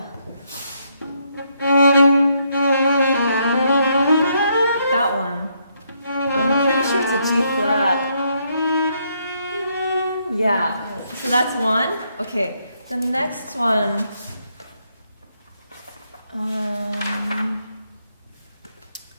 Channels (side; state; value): both; inverted; correlation -0.75